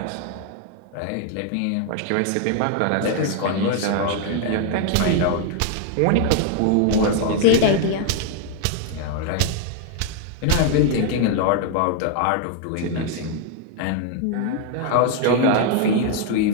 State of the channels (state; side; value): different; both; correlation 0.00